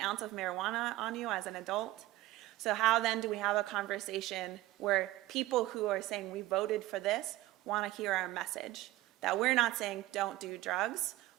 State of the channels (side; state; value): left; quieter; 16.9 dB